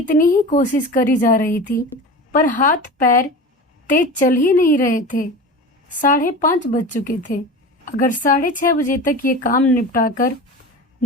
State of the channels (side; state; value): both; normal; correlation 0.31